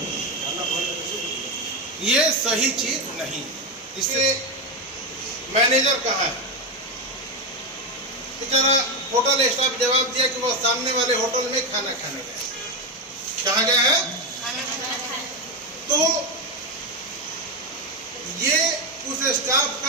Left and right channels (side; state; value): both; normal; correlation 0.10